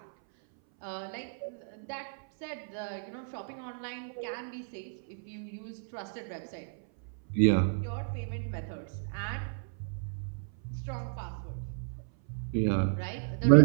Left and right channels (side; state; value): left; silent; 56 dB below the other